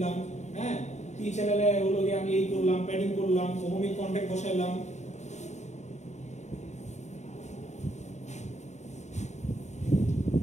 হ্যাঁ, পি চ্যানেলে হলো গিয়ে আমি এই করলাম, প্যাডিং করলাম, ওহমিক কন্টাক্ট বসাইলাম,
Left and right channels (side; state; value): right; late; 0.34 ms